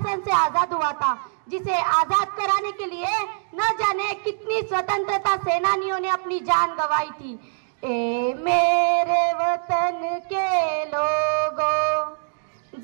से आजाद हुआ था, जिसे आजाद कराने के लिए न जाने कितनी स्वतंत्रता सेनानियों ने अपनी जान गंवाई थी। ए मेरे वतन के लोगों,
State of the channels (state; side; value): silent; left; digital silence